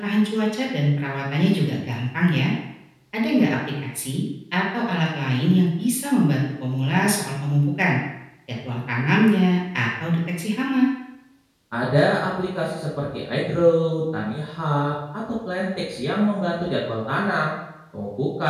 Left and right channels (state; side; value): identical; both; correlation 1.00